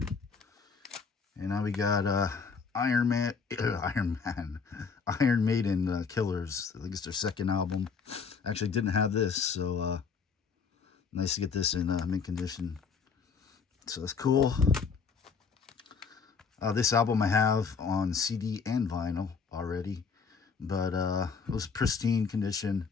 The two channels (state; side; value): quieter; right; 5.6 dB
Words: And now we got Iron Maiden Killers. I think it's their second album. Actually didn't have this, so nice to get this in mint condition. So that's cool. This album I have on CD and vinyl already, but it was pristine condition,